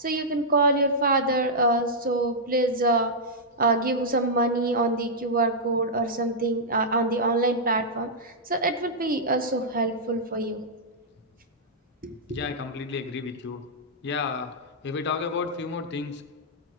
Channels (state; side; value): normal; both; correlation -0.08